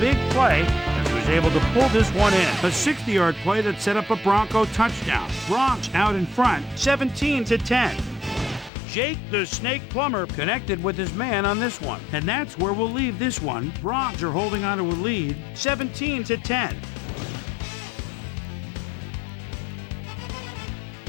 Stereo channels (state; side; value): drops out; right; at 8.7 s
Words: play as he was able to pull this one in. A 60-yard play that set up a Bronco touchdown. Broncos out in front, 17-10. Jake the Snake Plummer connected with his man on this one. And that's where we'll leave this one. Broncos are holding on to a lead, 17-10.